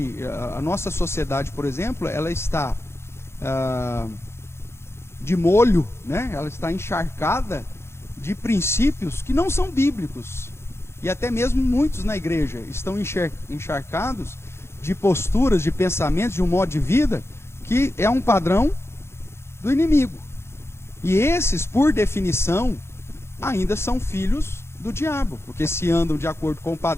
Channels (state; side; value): late; right; 0.12 ms